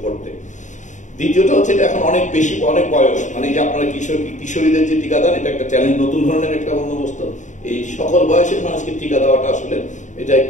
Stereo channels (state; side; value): late; right; 0.36 ms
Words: করতে। দ্বিতীয়টা হচ্ছে এটা এখন অনেক বেশি, অনেক বয়স, মানে যে আপনারা কিশোরীদের যে টিকাদান, এটা একটা চ্যালেঞ্জ, নতুন ধরনের একটা বন্দোবস্ত। এই সকল বয়সের মানুষকে টিকা দেওয়াটা আসলে এটা